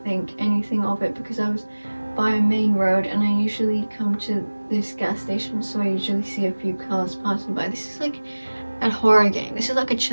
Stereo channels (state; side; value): inverted; both; correlation -1.00